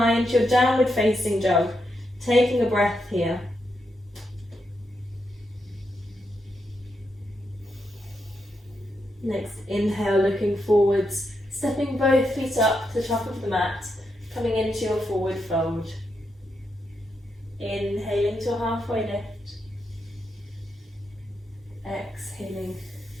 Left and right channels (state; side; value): normal; both; correlation 0.83